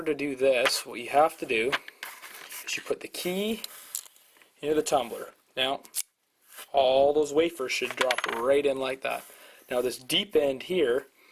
to do this, what you have to do is you put the key into the tumbler. Now all those wafers should drop right in like that. Now this deep end here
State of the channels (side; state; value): both; identical; correlation 1.00